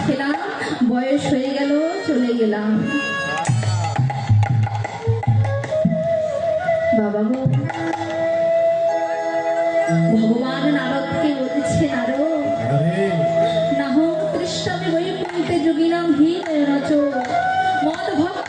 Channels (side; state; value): both; identical; correlation 1.00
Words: খেলাম, বয়স হয়ে গেল, চলে গেলাম। বাবা গো, ভগবান নারদকে বলছে, নারদ, নাহং তৃষ্ণামি বৈকুণ্ঠে যোগিনাং হীন নচ মদ